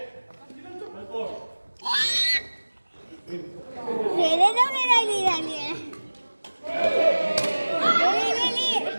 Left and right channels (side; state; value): both; inverted; correlation -1.00